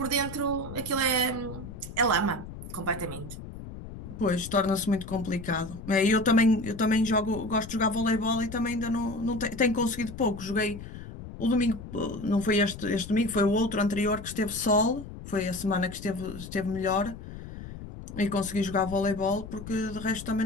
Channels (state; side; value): noise; left; rumble, 12 dB below the sound